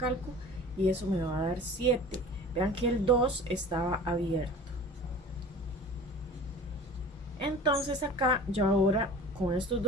y eso me va a dar 7. Vean que el 2 estaba abierto. Entonces acá yo ahora con estos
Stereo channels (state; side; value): normal; both; correlation 0.41